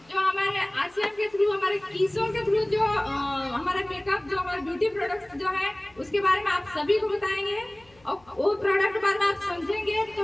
जो हमारे आरसीएम के थ्रू, हमारे कीसों के थ्रू जो हमारा मेकअप, जो हमारे ब्यूटी प्रोडक्ट्स जो है उसके बारे में आप सभी को बताएंगे और वो प्रोडक्ट बारे में आप समझेंगे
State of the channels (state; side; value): noise; left; hum, 30 dB below the sound